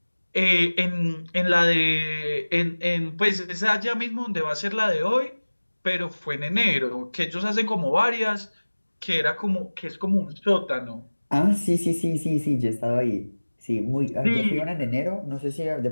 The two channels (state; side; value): inverted; both; correlation -1.00